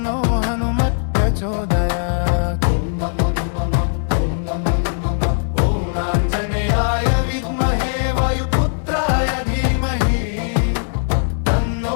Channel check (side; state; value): right; silent; digital silence